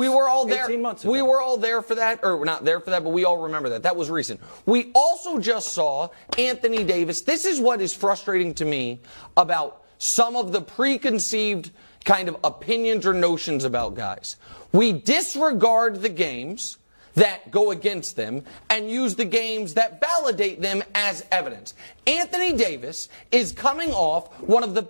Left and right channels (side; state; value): both; inverted; correlation -1.00